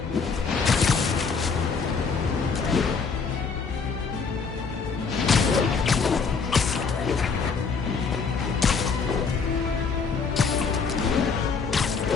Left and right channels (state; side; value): quieter; right; 5.2 dB